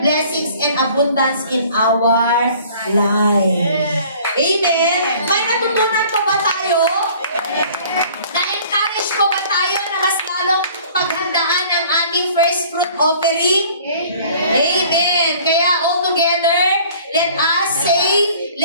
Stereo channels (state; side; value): inverted; both; correlation -0.51